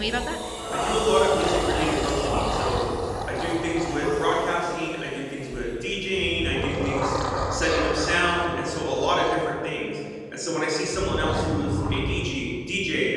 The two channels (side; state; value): both; identical; correlation 1.00